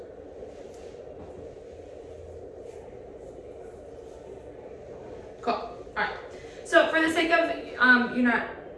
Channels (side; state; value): both; identical; correlation 1.00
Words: Cool. All right. So for the sake of you not